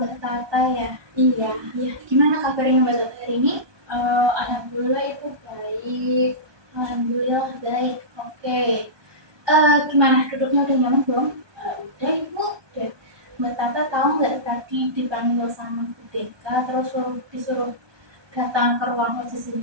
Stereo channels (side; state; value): left; late; 1.2 ms